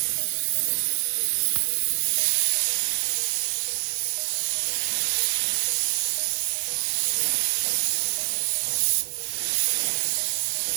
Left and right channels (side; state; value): left; silent; 61 dB below the other